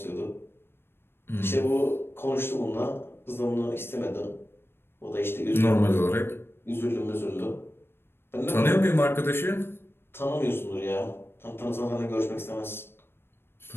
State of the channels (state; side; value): late; right; 0.11 ms